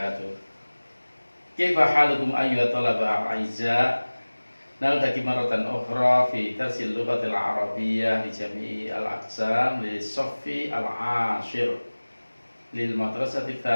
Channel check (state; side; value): inverted; both; correlation -1.00